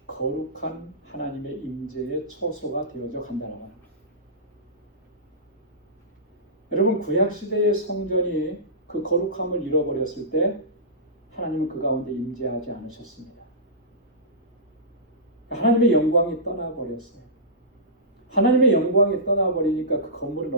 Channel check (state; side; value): normal; both; correlation -0.19